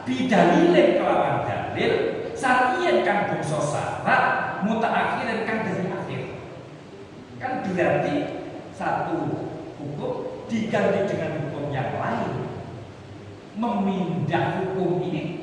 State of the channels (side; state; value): both; identical; correlation 1.00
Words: bidalilin kelawan dalil, syar'iyyin kang bangsa syarat mutaakhirin kang dari akhir. Kan berarti satu hukum diganti dengan hukum yang lain, memindah hukum